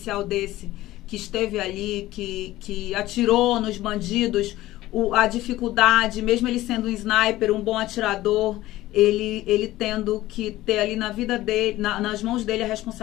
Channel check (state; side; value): quieter; right; 16.3 dB